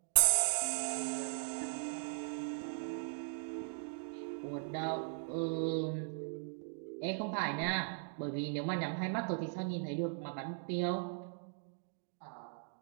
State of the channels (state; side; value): silent; left; digital silence